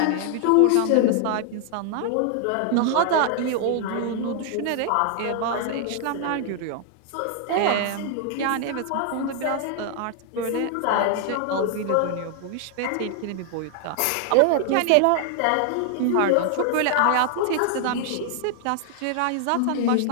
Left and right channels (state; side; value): different; both; correlation 0.00